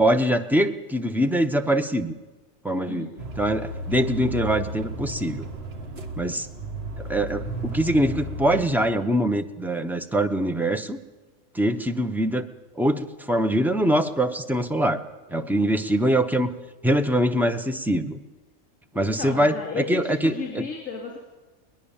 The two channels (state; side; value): normal; both; correlation 0.70